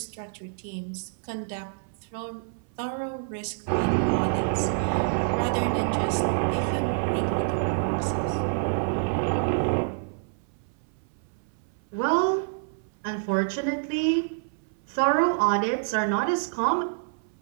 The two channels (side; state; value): left; silent; 60 dB below the other